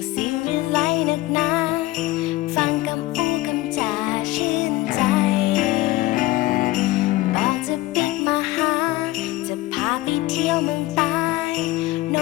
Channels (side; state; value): right; quieter; 18.3 dB